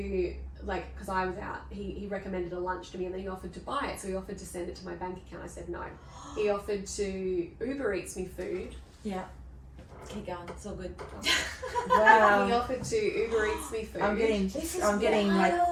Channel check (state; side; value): identical; both; correlation 1.00